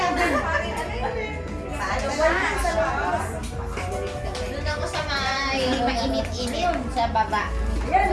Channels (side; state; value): both; identical; correlation 1.00